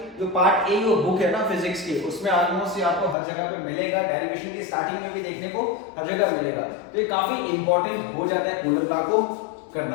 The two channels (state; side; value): drops out; right; at 3.2 s